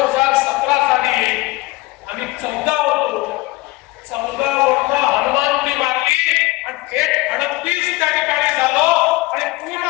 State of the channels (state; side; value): quieter; right; 20.9 dB